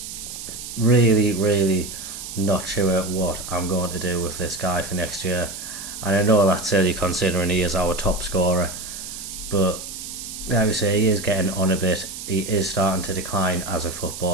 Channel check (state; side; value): noise; right; hiss, 9 dB below the sound